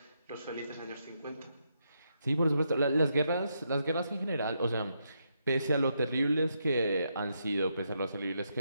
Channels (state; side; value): inverted; both; correlation -0.80